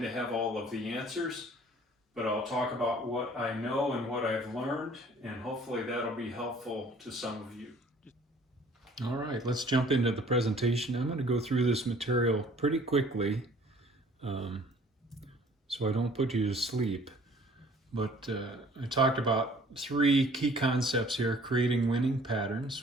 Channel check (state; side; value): normal; both; correlation 0.54